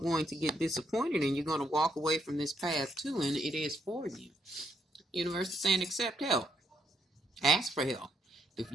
going to get disappointed, and you're going to walk away from this path too, and it is for you. Universe is saying accept help. Ask for help. If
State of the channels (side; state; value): both; normal; correlation 0.75